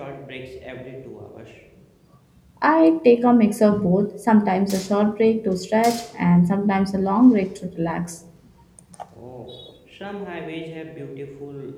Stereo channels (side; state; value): both; identical; correlation 1.00